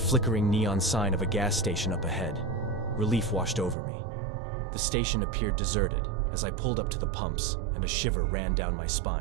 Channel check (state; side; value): drops out; left; at 3.8 s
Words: neon sign of a gas station up ahead, relief washed over me. The station appeared deserted as I pulled up to the pumps, and a shiver ran down my